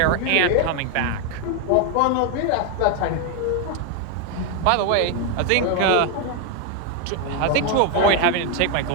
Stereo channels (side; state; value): both; different; correlation 0.01